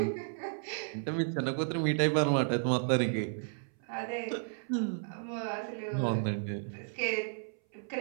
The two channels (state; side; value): silent; left; 56 dB below the other